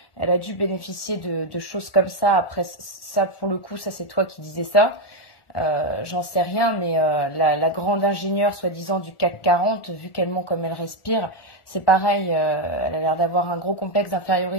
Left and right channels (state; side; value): late; right; 1.4 ms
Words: Elle a dû bénéficier de choses comme ça. Après, ça, pour le coup, ça, c'est toi qui disais ça. J'en sais rien, mais la grande ingénieure, soi-disant, du CAC 40, vu qu'elle ment comme elle respire, c'est pareil. Elle a l'air d'avoir un gros complexe